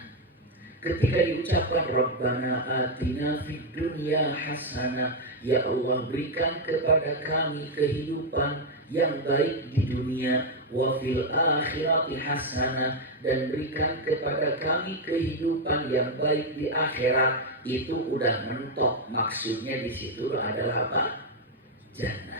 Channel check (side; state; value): both; normal; correlation 0.02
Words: Ketika diucapkan Rabbana atina fid dunya hasanah, ya Allah, berikan kepada kami kehidupan yang baik di dunia, wa fil akhirati hasanah, dan berikan kepada kami kehidupan yang baik di akhirat, itu udah mentok. Maksudnya di situ adalah apa?